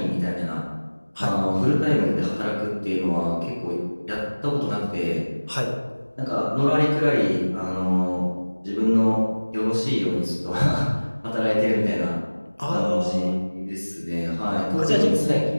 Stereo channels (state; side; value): inverted; both; correlation -1.00